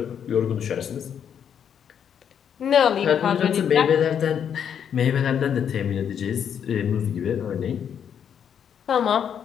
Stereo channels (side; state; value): right; quieter; 8.3 dB